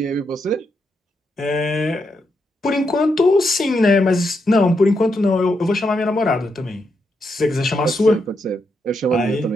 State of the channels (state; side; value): normal; both; correlation 0.82